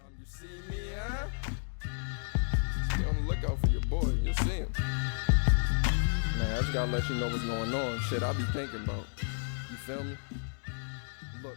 You see me, huh? Stay on the lookout for your boy. You'll see him. Man, I just gotta let you know what's going on. Shit, I be thinking about. You feel me?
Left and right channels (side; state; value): right; silent; digital silence